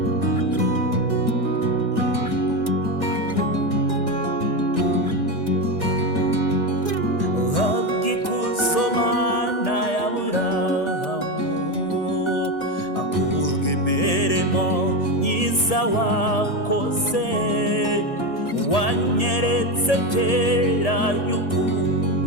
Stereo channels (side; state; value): right; late; 1.7 ms